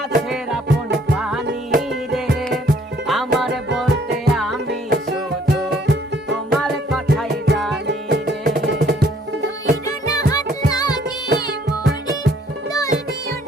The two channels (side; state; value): both; normal; correlation 0.62